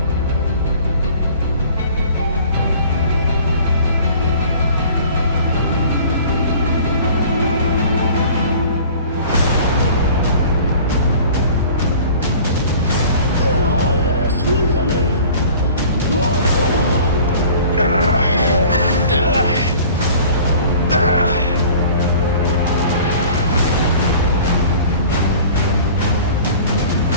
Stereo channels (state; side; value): inverted; both; correlation -0.46